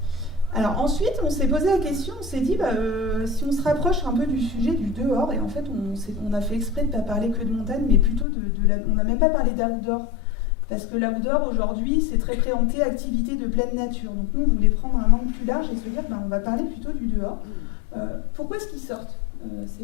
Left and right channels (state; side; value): drops out; right; at 8.2 s